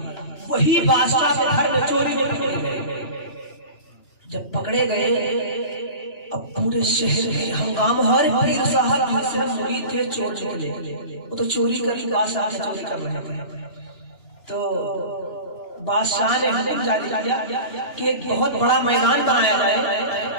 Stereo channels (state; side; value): late; right; 2.8 ms